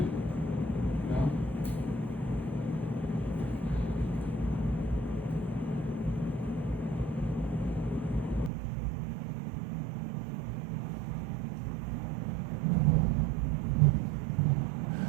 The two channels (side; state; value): left; drops out; at 8.5 s